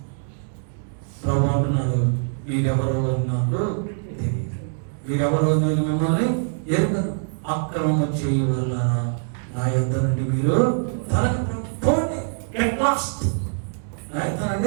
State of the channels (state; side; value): silent; left; digital silence